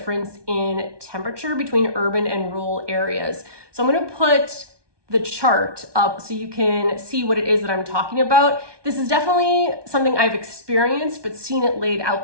in temperature between urban and rural areas. So I'm going to put the chart up so you can see what it is that I'm talking about. This is definitely something I've experienced, but seeing it laid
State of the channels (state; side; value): late; left; 1.2 ms